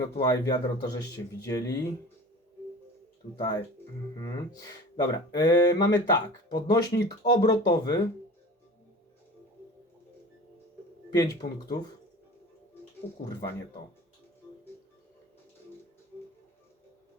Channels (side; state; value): both; normal; correlation 0.39